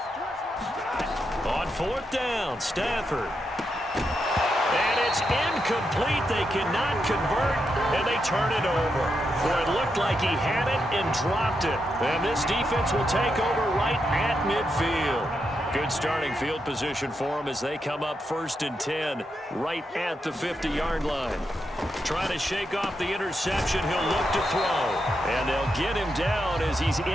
On 4th down, Stafford. And it's incomplete. They cannot convert, and they turn it over. Boy, it looked like he had it and dropped it. And this defense will take over right at midfield. Good starting field position for them as they come up 1st and 10 right at the 50-yard line. Trying to shake off the interception. He'll look to throw. And they'll get him down as he's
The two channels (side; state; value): both; normal; correlation 0.84